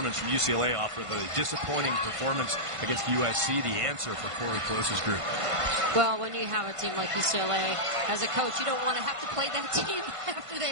from UCLA off of a disappointing performance against USC, the answer for Corey Close's group. Well, when you have a team like UCLA, as a coach, you don't want to have to play that team after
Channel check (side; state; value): left; late; 1.5 ms